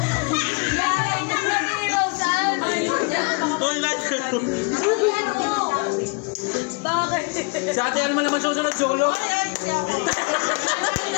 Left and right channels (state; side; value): quieter; right; 30.3 dB